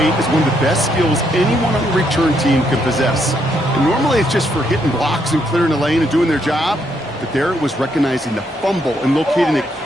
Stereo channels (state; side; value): normal; both; correlation 0.75